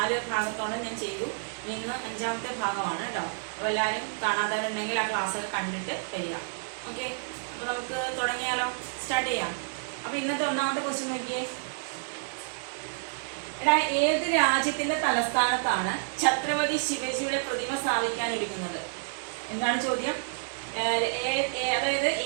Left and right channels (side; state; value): left; silent; 58 dB below the other